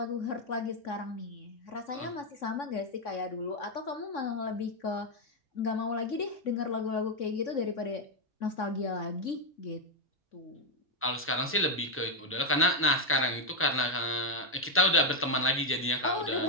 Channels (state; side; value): normal; both; correlation 0.01